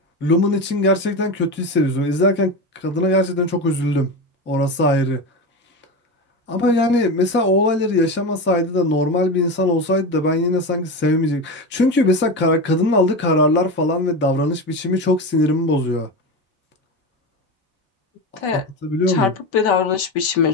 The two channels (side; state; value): both; normal; correlation 0.21